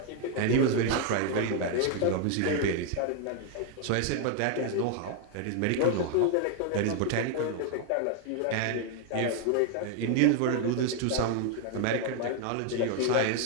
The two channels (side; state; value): both; different; correlation 0.01